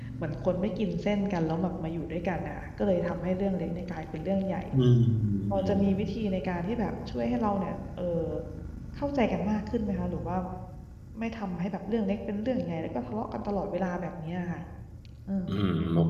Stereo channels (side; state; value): both; identical; correlation 1.00